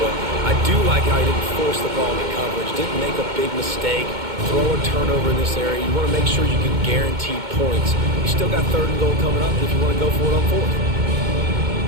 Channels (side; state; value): left; late; 2.2 ms